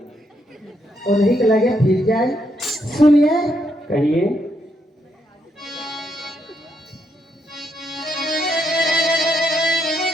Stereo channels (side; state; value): both; normal; correlation 0.77